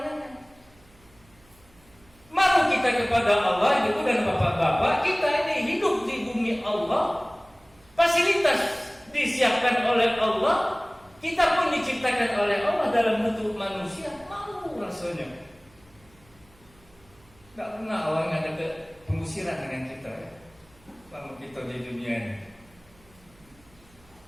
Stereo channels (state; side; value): noise; right; hum, 29 dB below the sound